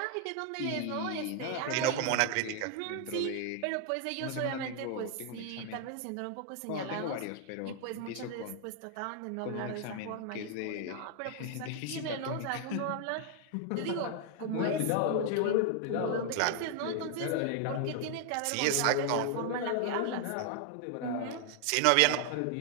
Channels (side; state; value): both; different; correlation 0.00